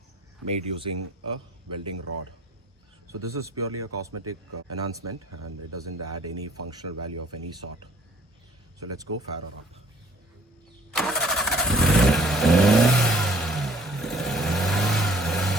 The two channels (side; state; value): both; normal; correlation 0.54